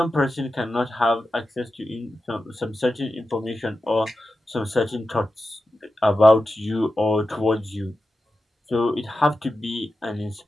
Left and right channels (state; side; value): normal; both; correlation 0.91